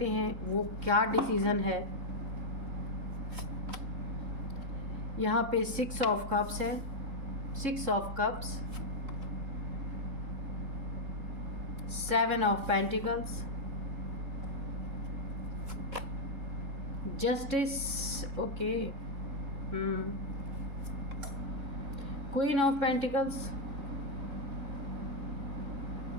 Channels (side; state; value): left; late; 3.6 ms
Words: हैं वो क्या डिसीज़न है। यहाँ पे 6 ऑफ कप्स है, 6 of cups, 7 of pentacles, justice, okay, queen of pentacles,